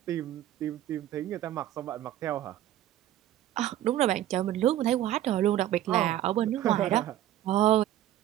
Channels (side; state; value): left; quieter; 12.9 dB